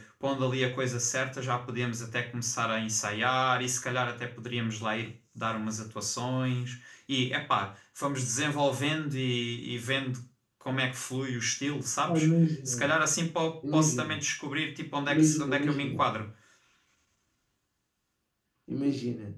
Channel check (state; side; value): identical; both; correlation 1.00